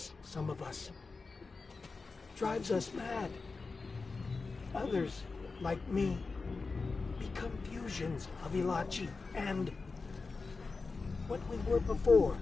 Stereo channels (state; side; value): quieter; right; 4.2 dB